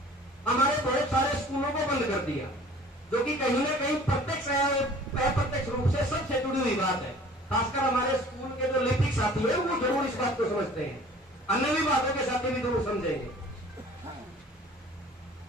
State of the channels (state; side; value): normal; both; correlation 0.48